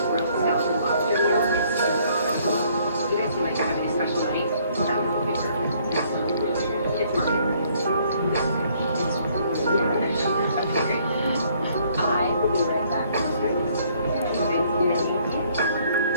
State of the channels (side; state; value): both; inverted; correlation -0.64